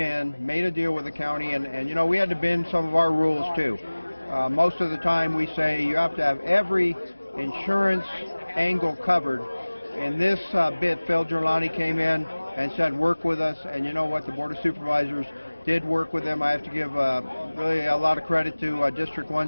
made a deal with the county, and you know, we had to bend some of our rules too. Most of the time we say you have to have every insurance angle covered. In this bit, Phil Giuliani came in and said work with us, and you know what, the Board of Supervisors did work with them. I have to give really a lot of credit to District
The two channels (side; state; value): both; inverted; correlation -1.00